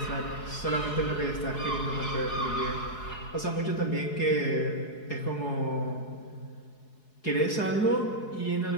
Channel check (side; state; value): right; late; 4.7 ms